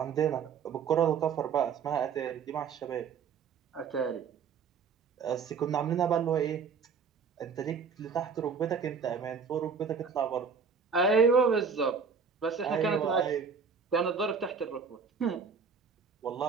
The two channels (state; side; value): quieter; left; 5.8 dB